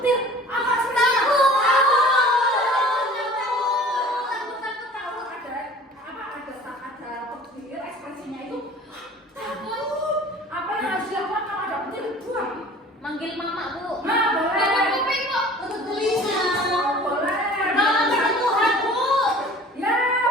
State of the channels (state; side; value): normal; both; correlation 0.46